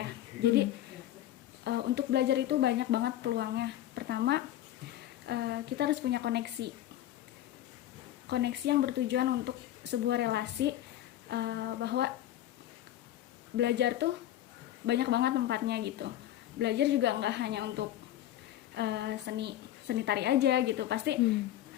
ya. Jadi untuk belajar itu banyak banget peluangnya. Pertama, kita harus punya koneksi. Koneksi yang bertujuan untuk sebuah relasi, bahwa belajar tuh banyak banget tempatnya gitu. Belajar juga nggak hanya untuk seni tari aja gitu. Pasti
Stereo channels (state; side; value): quieter; right; 12.9 dB